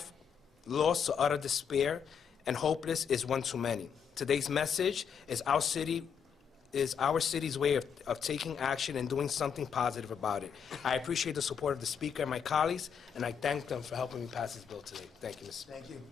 lost to utter despair and hopeless is one too many. Today's message is our city's way of taking action and doing something positive about it. I appreciate the support of the Speaker and my colleagues, and I thank them for helping me pass this bill today. Thank you, Mr. Speaker. Thank you.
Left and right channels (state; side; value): quieter; right; 7.2 dB